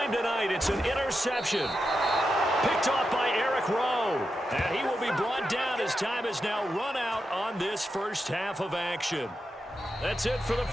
tonight, it's an interception. Picked off by Eric Rowe. And he will be brought down as time is now run out on this first half of action. That's it for the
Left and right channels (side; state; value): both; normal; correlation 0.88